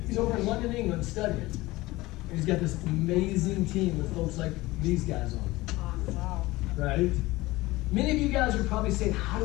He's over in London, England studying. And he's got this amazing team with folks like these guys on. Wow. Right? Many of you guys are probably saying, how do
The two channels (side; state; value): right; quieter; 19.6 dB